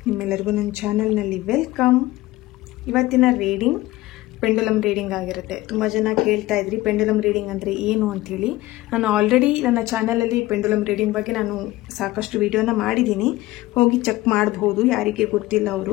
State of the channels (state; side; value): quieter; right; 18.0 dB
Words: ನಿಮ್ಮೆಲ್ಲರಿಗೂ ನನ್ನ ಚಾನಲ್ನಲ್ಲಿ ವೆಲ್ಕಮ್. ಇವತ್ತಿನ ರೀಡಿಂಗ್ ಪೆಂಡುಲಮ್ ರೀಡಿಂಗ್ ಆಗಿರುತ್ತೆ. ತುಂಬ ಜನ ಕೇಳ್ತಾ ಇದ್ರಿ ಪೆಂಡುಲಮ್ ರೀಡಿಂಗ್ ಅಂದರೆ ಏನು ಅಂಥೇಳಿ. ನಾನು ಆಲ್ರೆಡಿ ನನ್ನ ಚಾನಲಲ್ಲಿ ಪೆಂಡುಲಮ್ ರೀಡಿಂಗ್ ಬಗ್ಗೆ ನಾನು ಸಾಕಷ್ಟು ವಿಡಿಯೋನ ಮಾಡಿದ್ದೀನಿ, ಹೋಗಿ ಚೆಕ್ ಮಾಡಬಹುದು ಯಾರಿಗೆ ಗೊತ್ತಿಲ್ಲ